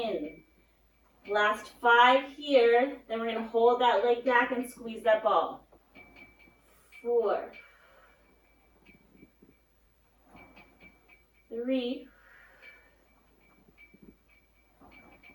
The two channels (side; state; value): both; identical; correlation 1.00